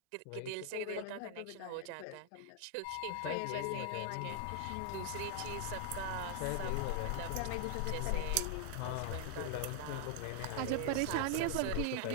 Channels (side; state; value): both; different; correlation 0.00